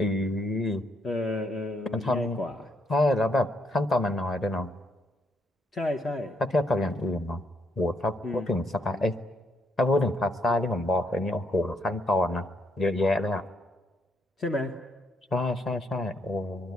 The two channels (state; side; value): normal; both; correlation 0.74